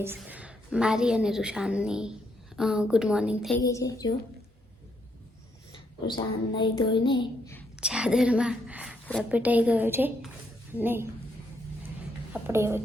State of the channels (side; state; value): both; normal; correlation 0.75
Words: મારી અને રૂશાનની ગુડ મોર્નિંગ થઈ ગઈ છે. જો રૂશાન નહીં ધોઈને ચાદરમાં લપેટાઈ ગયો છે અને આપણે હવે